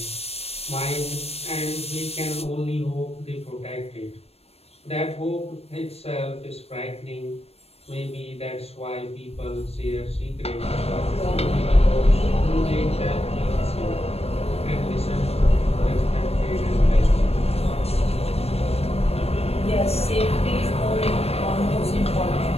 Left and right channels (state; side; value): late; right; 0.29 ms